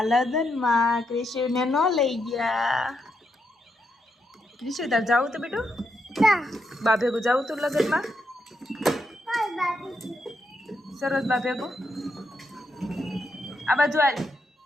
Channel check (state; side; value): normal; both; correlation 0.81